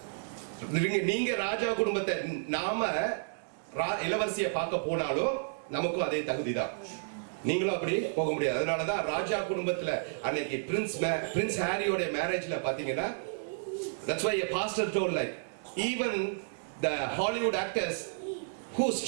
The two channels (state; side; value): silent; left; digital silence